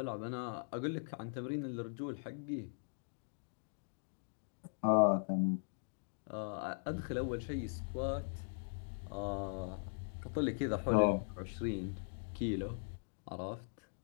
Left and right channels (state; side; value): silent; right; digital silence